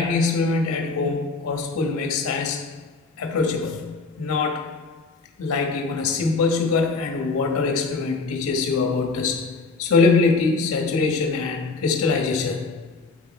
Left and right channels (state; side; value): quieter; right; 3.9 dB